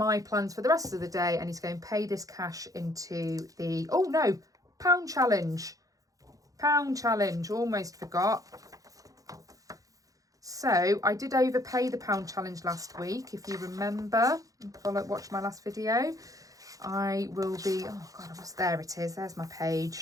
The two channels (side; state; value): left; late; 0.17 ms